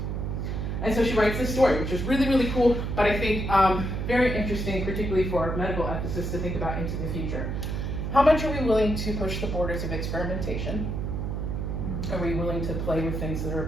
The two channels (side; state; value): right; noise; hum, 2 dB below the sound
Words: And so she writes this story, which is really, really cool, but I think very interesting, particularly for medical ethicists to think about into the future. How much are we willing to push the borders of experimentation? Are we willing to play with things that